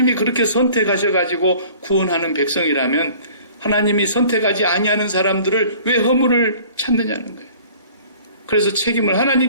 그렇게 선택하셔가지고 구원하는 백성이라면 하나님이 선택하지 아니하는 사람들을 왜 허물을 찾느냐는 거예요. 그래서 책임을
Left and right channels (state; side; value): inverted; both; correlation -0.49